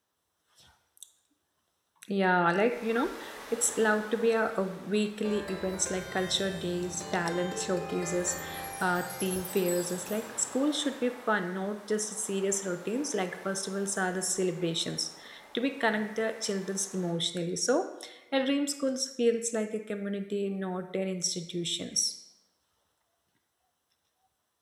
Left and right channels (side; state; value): both; identical; correlation 1.00